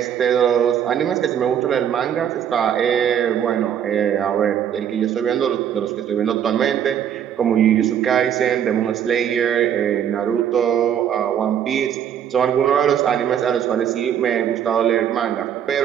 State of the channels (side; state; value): left; quieter; 9.2 dB